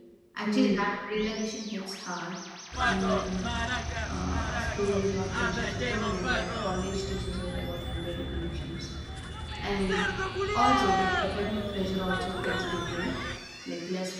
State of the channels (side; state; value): both; identical; correlation 1.00